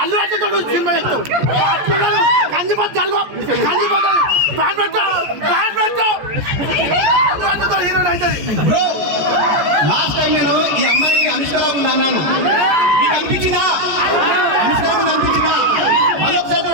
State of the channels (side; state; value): left; late; 14 ms